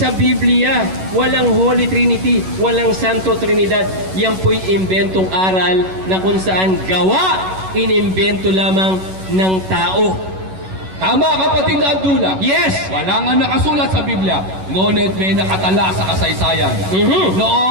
Biblia. Walang Holy Trinity. Walang Santo Trinidad. Yan po'y imbentong aral na kung saan gawa, inimbento lamang ng tao. Tama, kapatid na Abdullah. Yes! Wala nga nakasulat sa Biblia. Ngunit may nakatala sa kasaysayan.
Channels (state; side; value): late; left; 11 ms